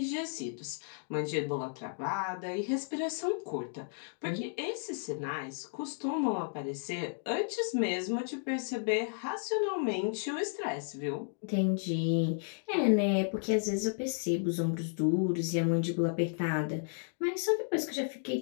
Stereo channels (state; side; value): silent; right; digital silence